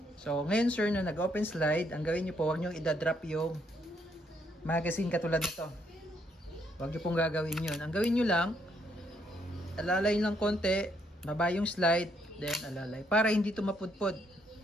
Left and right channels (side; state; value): both; normal; correlation 0.72